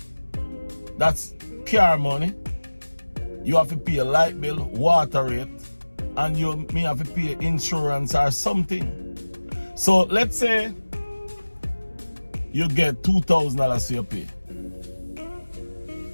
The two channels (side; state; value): both; inverted; correlation -1.00